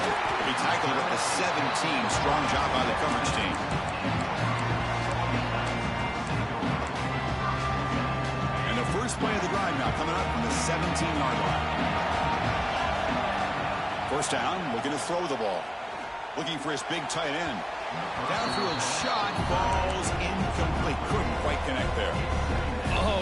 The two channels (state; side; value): identical; both; correlation 1.00